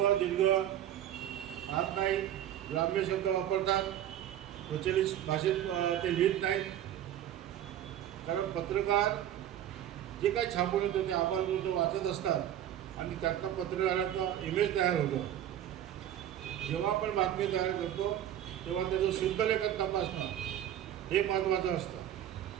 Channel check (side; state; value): left; quieter; 11.3 dB